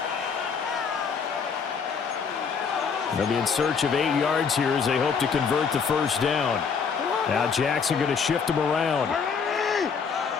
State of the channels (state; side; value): quieter; right; 6.0 dB